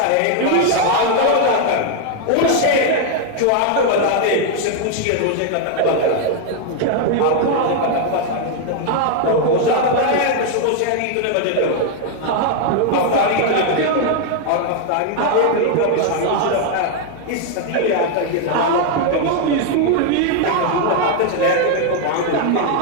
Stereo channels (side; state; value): both; different; correlation 0.00